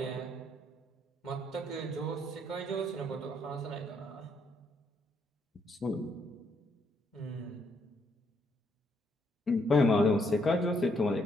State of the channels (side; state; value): both; normal; correlation 0.73